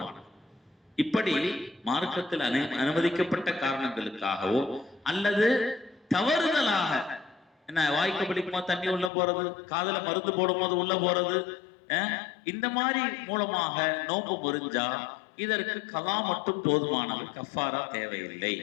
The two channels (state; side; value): drops out; right; at 9.1 s